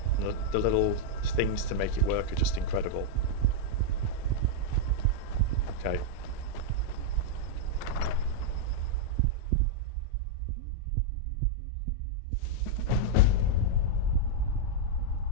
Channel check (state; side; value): different; both; correlation -0.02